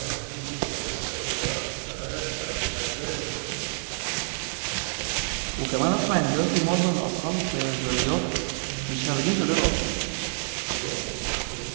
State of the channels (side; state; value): left; silent; digital silence